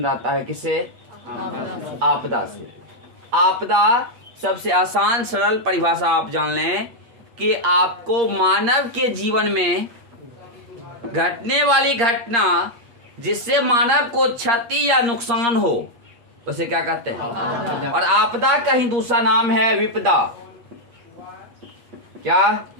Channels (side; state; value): left; late; 8.6 ms